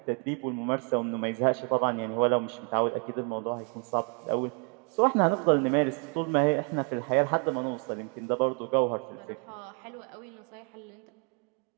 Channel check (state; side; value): quieter; left; 38.7 dB